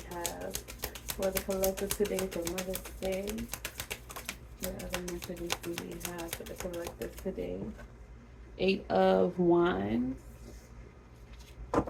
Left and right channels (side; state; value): both; identical; correlation 1.00